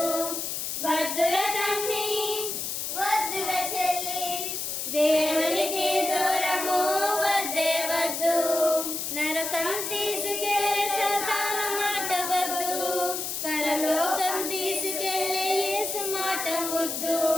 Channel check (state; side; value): noise; left; hiss, 3 dB below the sound